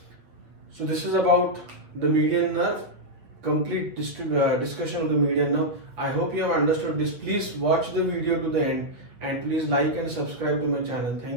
So this is about the median nerve, complete discussion of the median nerve. I hope you have understood this. Please watch the video to the end, and please like and subscribe to my channel.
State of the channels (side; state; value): left; late; 8.6 ms